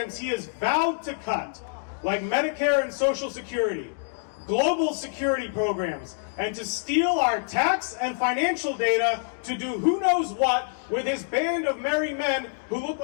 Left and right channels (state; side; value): silent; right; digital silence